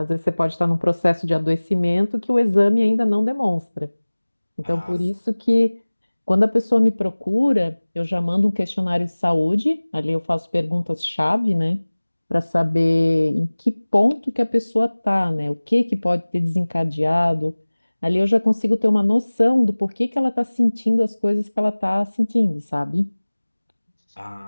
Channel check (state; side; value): inverted; both; correlation -1.00